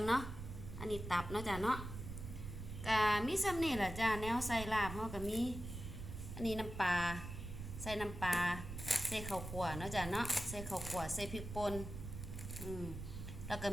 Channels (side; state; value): right; noise; rumble, 8 dB below the sound